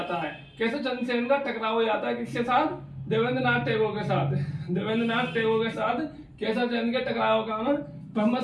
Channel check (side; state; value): both; identical; correlation 1.00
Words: है। केशव चंद्र सेन का टकराव हो जाता है किसके साथ? देवेंद्रनाथ टैगोर के साथ। देवेंद्रनाथ टैगोर के साथ केशव चंद्र के टकराव का कारण ब्रह्म